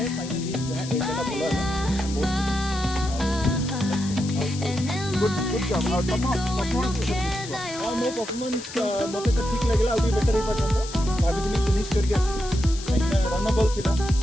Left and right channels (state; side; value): noise; left; hiss, 12 dB below the sound